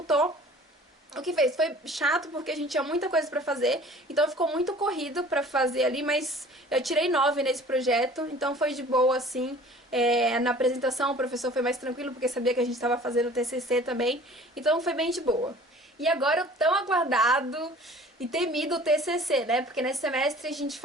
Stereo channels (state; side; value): normal; both; correlation 0.48